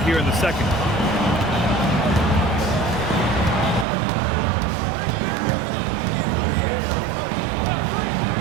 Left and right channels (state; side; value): drops out; left; at 3.9 s